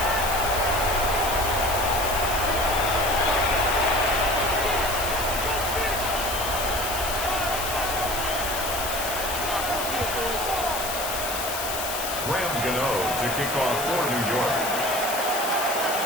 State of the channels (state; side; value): noise; left; hiss, 5 dB below the sound